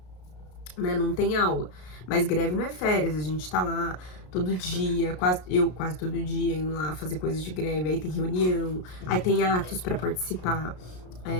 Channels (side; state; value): right; late; 33 ms